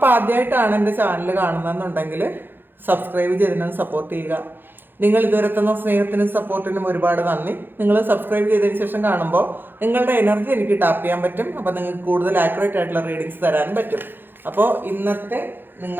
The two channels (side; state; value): left; late; 0.098 ms